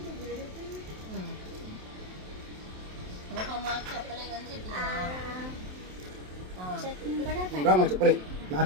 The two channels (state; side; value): late; left; 27 ms